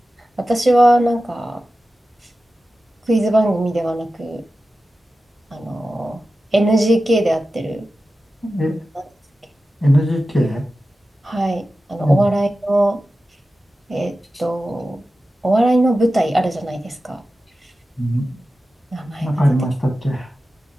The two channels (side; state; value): both; normal; correlation 0.94